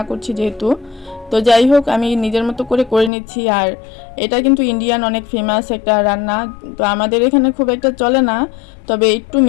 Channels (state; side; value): drops out; right; at 3.1 s